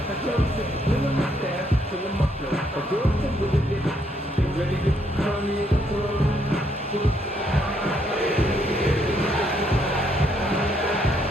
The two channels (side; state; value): both; normal; correlation 0.72